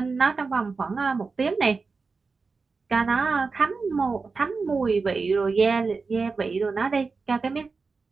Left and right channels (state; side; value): quieter; left; 4.4 dB